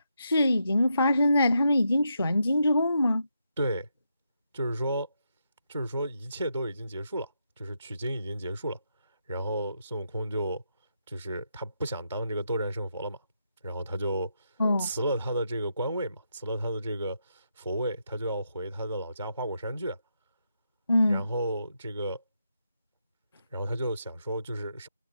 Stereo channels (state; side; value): inverted; both; correlation -0.82